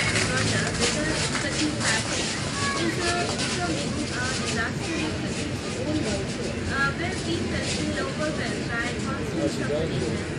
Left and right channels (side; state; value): both; identical; correlation 1.00